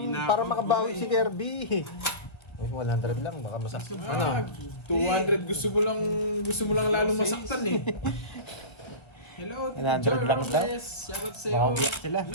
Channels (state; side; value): late; right; 1.5 ms